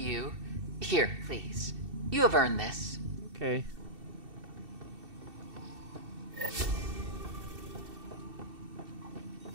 Here, please. You have earned this. Okay.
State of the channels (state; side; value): late; left; 2.7 ms